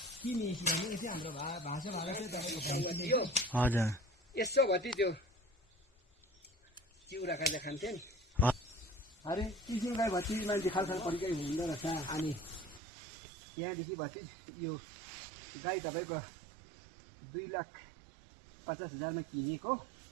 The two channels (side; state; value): left; drops out; at 12.8 s